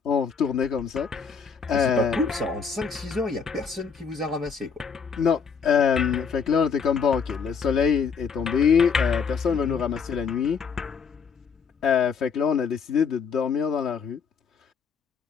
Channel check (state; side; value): quieter; right; 6.0 dB